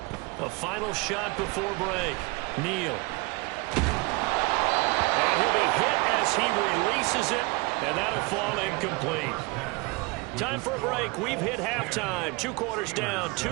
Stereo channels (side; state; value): left; quieter; 25.8 dB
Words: A final shot before break. Neal. And he'll be hit as he releases it, and that'll fall incomplete. Time for a break. We've hit halftime. 2 quarters down,